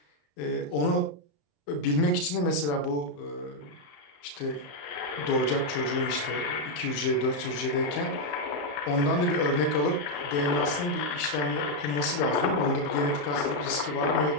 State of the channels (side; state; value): right; late; 34 ms